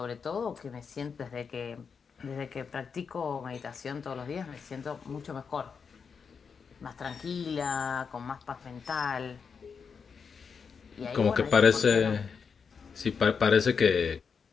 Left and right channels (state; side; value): quieter; right; 6.0 dB